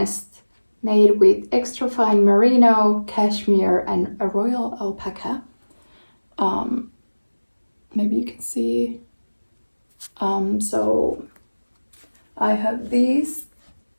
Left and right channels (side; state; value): both; inverted; correlation -1.00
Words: made with extra fine merino, cashmere and a royal alpaca. Maybe you can see. So I have these